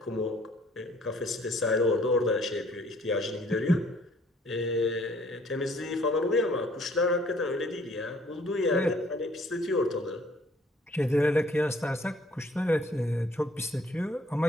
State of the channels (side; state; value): both; normal; correlation 0.60